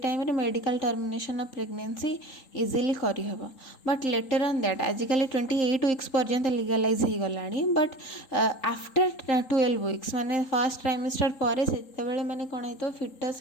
रे medical termination of pregnancy easily करी हबो. बट लेटर ऑन दैट आजिकली 28 weeks पर्यंत लीगलाइज हो गलानी. बट आफ्टर 12 weeks माने फर्स्ट ट्राइमेस्टर पर से माने कौन है तो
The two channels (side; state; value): right; late; 3.8 ms